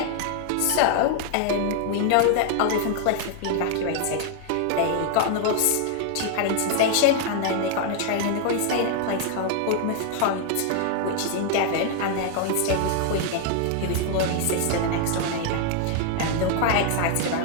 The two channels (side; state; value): both; different; correlation 0.00